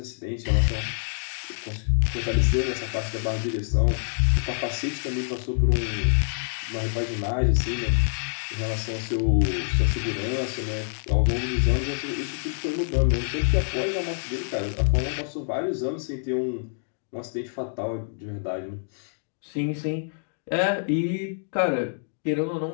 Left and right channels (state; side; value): silent; right; digital silence